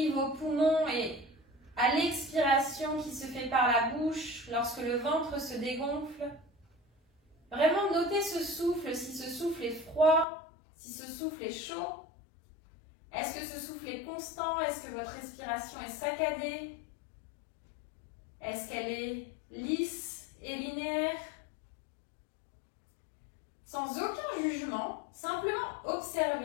vos poumons et à l'expiration qui se fait par la bouche lorsque le ventre se dégonfle. Vraiment notez ce souffle, si ce souffle est froid, si ce souffle est chaud. Est-ce que ce souffle est constant? Est-ce que votre respiration est saccadée? Est-ce qu'elle est lisse et linéaire? Sans aucun jugement, simplement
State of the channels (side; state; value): right; drops out; at 10.2 s